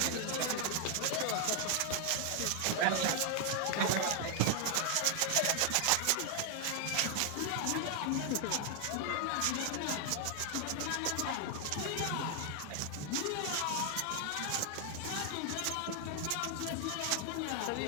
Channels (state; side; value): different; both; correlation 0.00